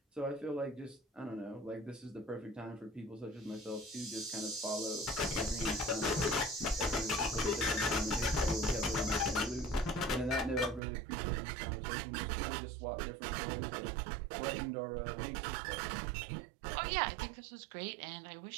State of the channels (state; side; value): drops out; left; at 10.8 s